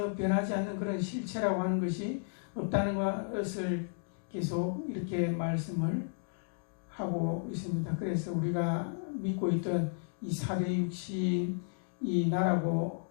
변하지 않는 그런 실체라고 하는 것이 없다는 것을 계속 이렇게 말씀을 하고 있습니다. 그래서 우리가 믿고 있던 이 사대 육신, 이 나라고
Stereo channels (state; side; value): silent; right; digital silence